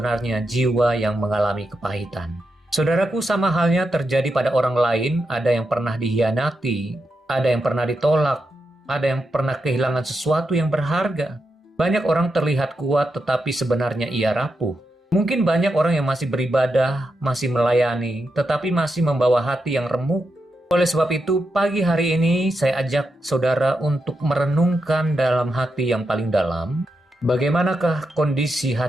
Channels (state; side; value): normal; both; correlation 0.86